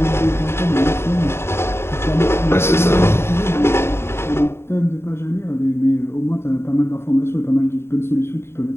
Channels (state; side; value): late; right; 0.12 ms